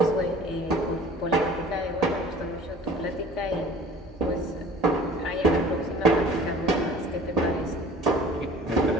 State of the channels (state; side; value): normal; both; correlation 0.46